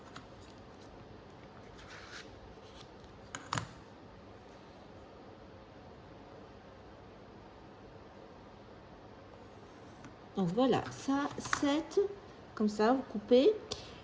Donc voilà, ça, 7, comme ça, vous coupez.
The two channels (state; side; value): identical; both; correlation 1.00